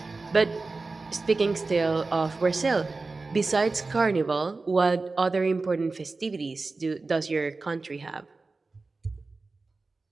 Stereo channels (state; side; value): quieter; left; 3.7 dB